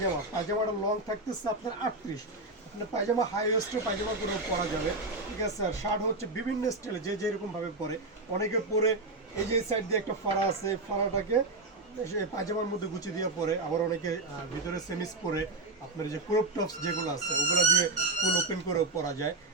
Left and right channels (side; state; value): left; quieter; 3.1 dB